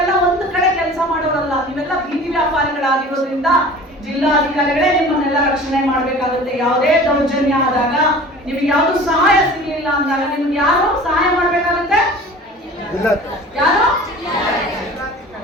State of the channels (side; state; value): both; normal; correlation 0.42